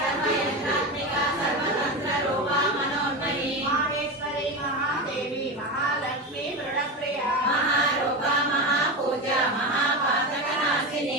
సర్వతంత్ర రూపా మనోన్మయీ మహేశ్వరి మహాదేవి మహాలక్ష్మి దృఢప్రియ మహారూప మహాపూజ మహాపాతకనాశిని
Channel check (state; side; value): normal; both; correlation 0.20